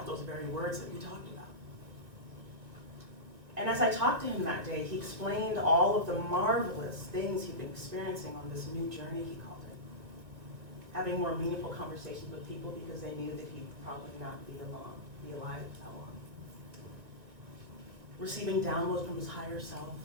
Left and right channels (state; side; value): late; left; 1.9 ms